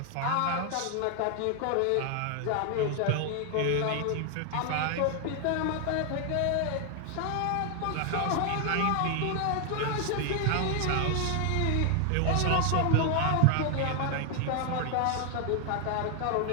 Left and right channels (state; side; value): different; both; correlation 0.00